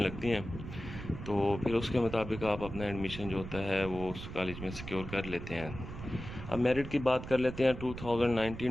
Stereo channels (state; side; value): noise; right; rumble, 10 dB below the sound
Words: हैं। तो फिर उसके मुताबिक आप अपना एडमिशन जो होता है वो उस कॉलेज में सिक्योर कर लेते हैं। अब मेरिट की बात कर लेते हैं।